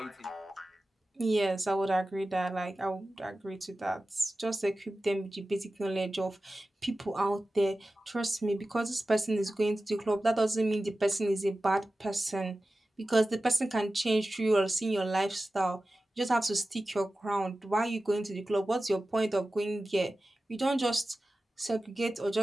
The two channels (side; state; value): both; normal; correlation 0.95